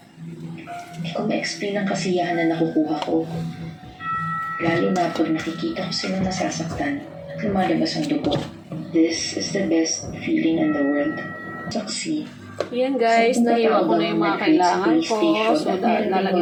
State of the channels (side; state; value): both; identical; correlation 1.00